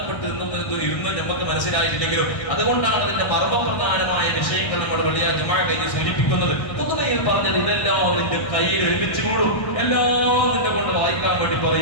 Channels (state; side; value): late; right; 1.6 ms